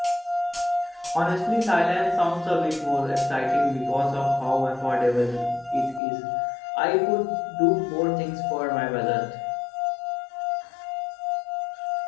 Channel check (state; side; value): drops out; right; at 6.0 s